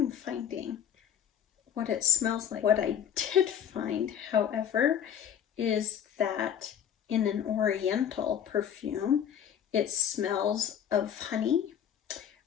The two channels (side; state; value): right; quieter; 9.1 dB